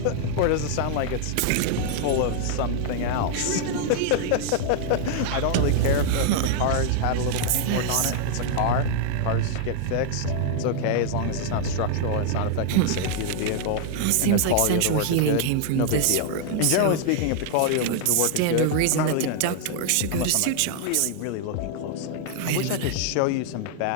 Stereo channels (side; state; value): both; different; correlation 0.00